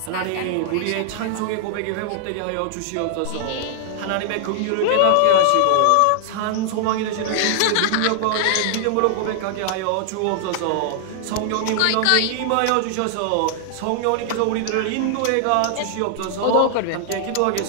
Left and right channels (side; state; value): both; different; correlation -0.01